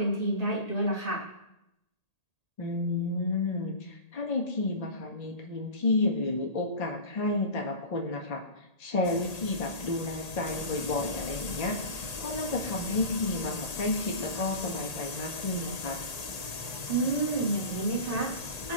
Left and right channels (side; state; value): right; late; 1.8 ms